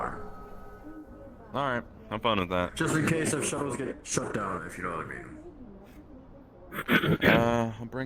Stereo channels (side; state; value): both; identical; correlation 1.00